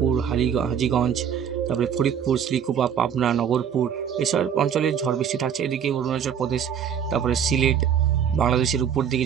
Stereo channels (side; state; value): left; quieter; 8.2 dB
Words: হাজীগঞ্জ, তারপরে ফরিদপুর, শ্রীকুপা, পাবনা, নগরপুর, এসব অঞ্চলে ঝড় বৃষ্টি থাকছে। এদিকে অরুণাচল প্রদেশ, তারপরে সিলেট, বাংলাদেশের উপর দিকে